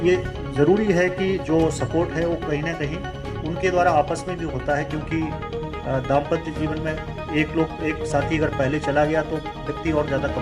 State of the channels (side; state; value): both; identical; correlation 1.00